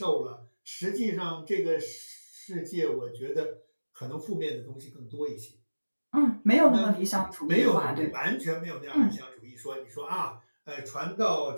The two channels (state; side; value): inverted; both; correlation -1.00